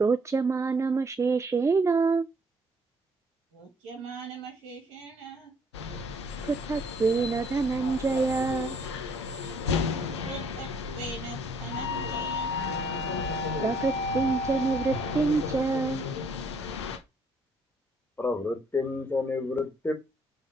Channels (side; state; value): both; normal; correlation 0.64